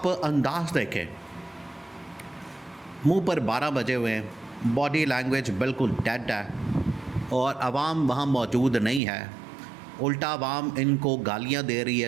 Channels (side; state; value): left; drops out; at 9.0 s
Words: अंदाज़ देखें। मुंह पर 12 बजे हुए हैं, बॉडी लैंग्वेज बिल्कुल डेड है और आवाम वहाँ मौजूद नहीं है। उल्टा आवाम इनको गालियाँ दे रही है,